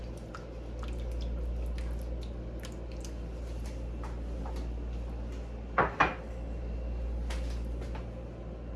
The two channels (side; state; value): both; identical; correlation 1.00